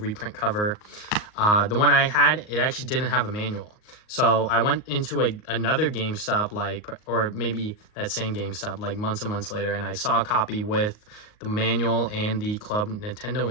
cover. The one I had, it actually didn't have a manual. So I went into another GameStop, like, or maybe that same GameStop, like months and months later, and I saw a copy with the manual and the Club Nintendo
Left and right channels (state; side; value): late; right; 38 ms